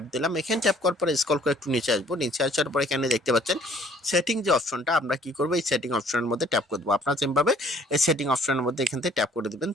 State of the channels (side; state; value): both; normal; correlation 0.57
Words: দিলাম। এখানে ট্যাপ করার পরে স্ক্রল করে একটু নিচে আসবো। নিচে আসার পর এখানে দেখতে পাচ্ছেন সেটিং যে অপশনটা, আমরা কি করবো, এই সেটিং অপশনের মধ্যে ট্যাপ করে দেবো। আপনারা যেভাবে এই সেটিং অপশনের মধ্যে এখান থেকে ট্যাপ করে দেবেন।